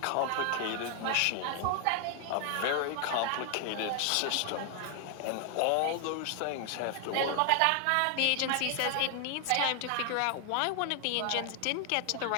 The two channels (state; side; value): different; both; correlation 0.00